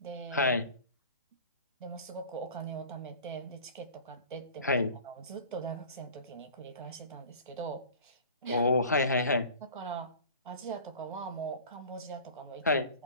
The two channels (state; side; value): inverted; both; correlation -0.40